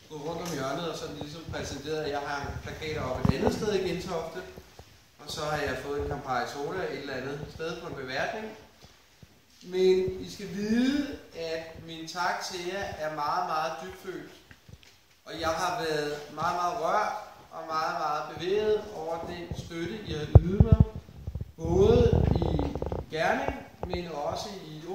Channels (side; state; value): both; identical; correlation 1.00